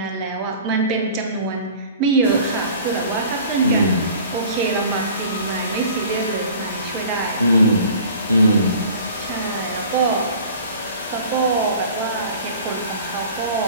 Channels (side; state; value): both; inverted; correlation -0.44